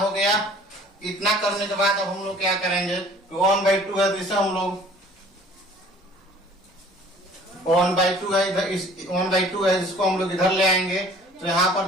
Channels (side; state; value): both; normal; correlation 0.51